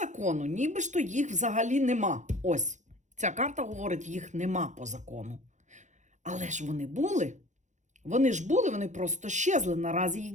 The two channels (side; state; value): left; late; 0.35 ms